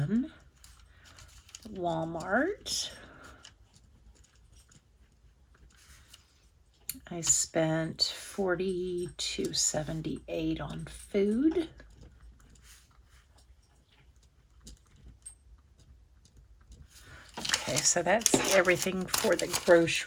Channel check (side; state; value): both; identical; correlation 1.00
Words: Walmart. I spent $42.78 on food. Okay, so that's everything for the